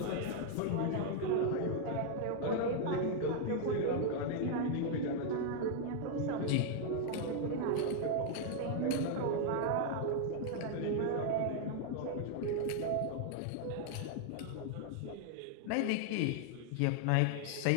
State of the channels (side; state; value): both; different; correlation 0.00